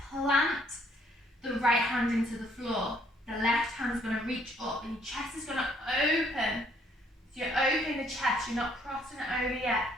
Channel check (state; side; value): normal; both; correlation 0.66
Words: plant the right hand into the floor. The left hand is gonna reach up and your chest is gonna open. So you're opening the chest, you're not crossing it over yet.